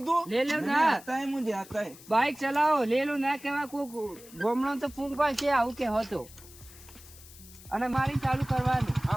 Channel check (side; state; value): left; noise; hiss, 20 dB below the sound